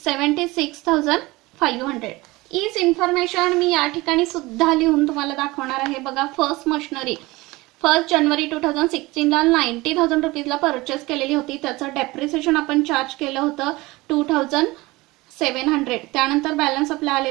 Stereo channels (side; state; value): left; quieter; 21.3 dB